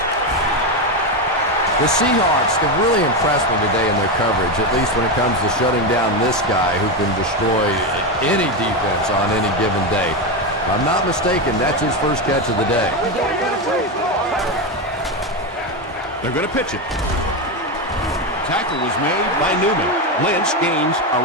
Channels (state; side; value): normal; both; correlation 0.12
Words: The Seahawks have really impressed me today in their coverage, at least when it comes to shutting down this guy who can destroy any defense on any given day. If I'm not mistaken, that's his first catch of the day. They're going to pitch it. Tackle was made by Newman. Lynch gains